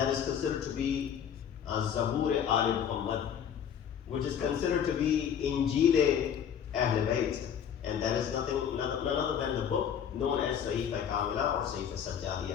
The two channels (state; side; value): quieter; right; 8.5 dB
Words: is considered to be Zabur Ali Muhammad, which is considered to be Injil Ahl-e-Bait, and that is none other than the book known as Sahifa Kamila or Sahifa